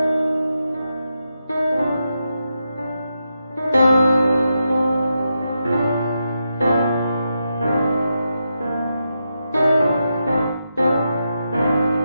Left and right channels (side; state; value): both; inverted; correlation -0.85